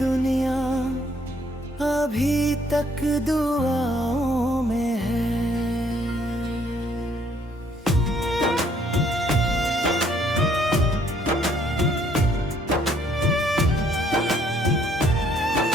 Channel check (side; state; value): both; normal; correlation 0.65